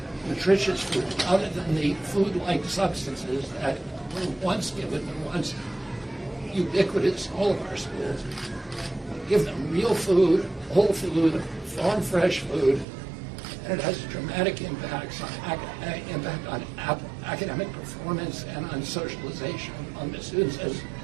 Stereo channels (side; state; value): left; drops out; at 12.9 s